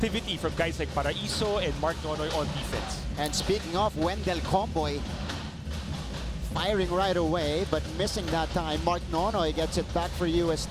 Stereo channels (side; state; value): both; identical; correlation 1.00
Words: from guys like Paraiso and Mark Nonoy on defense. And speaking of Wendell Comboy, firing right away, but missing that time. Mark Nonoy gets it back for